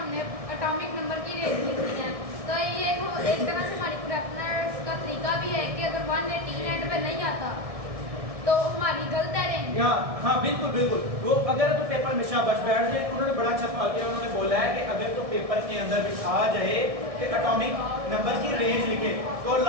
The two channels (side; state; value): left; late; 1.6 ms